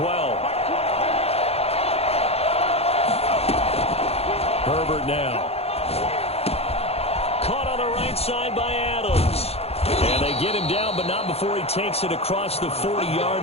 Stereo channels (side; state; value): right; late; 0.29 ms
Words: Herbert now. Caught on the right side by Adams. And they get him down, but not before he takes it across the